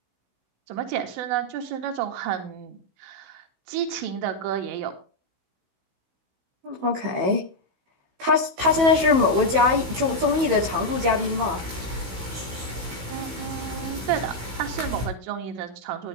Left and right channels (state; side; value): late; left; 15 ms